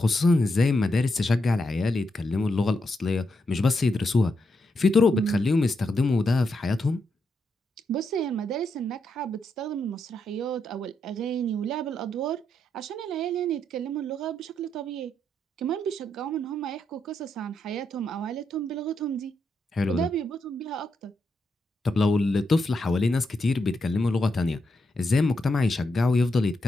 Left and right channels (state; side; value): normal; both; correlation 0.82